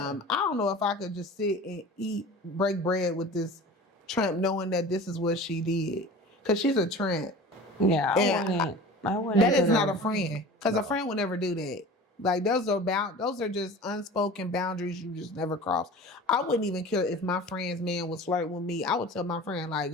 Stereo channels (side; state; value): both; normal; correlation 0.39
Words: I don't know if I could just sit and break bread with this tramp, knowing that this is what she did. Cause she's a tramp. yeah, And I wouldn't. That is not a friend. Cause a friend would never do that. Like those are just unspoken boundaries you just never cross. I wouldn't even care if my friend's man was flirting with me. I would tell my friend, like,